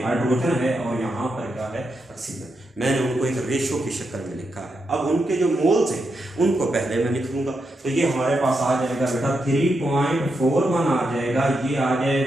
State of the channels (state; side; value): normal; both; correlation 0.84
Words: हाइड्रोजन है और यहाँ पर क्या है, ऑक्सीजन। मैंने उनको एक रेशो की शक्ल में लिखा है। अब उनके जो मोल्स हैं उनको पहले मैं लिख लूंगा। तो ये हमारे पास आ जाएगा बेटा 3.41 आ जाएगा, ये आ